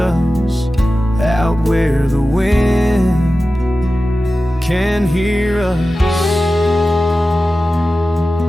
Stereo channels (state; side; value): normal; both; correlation 0.94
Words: out where the wind can hear us.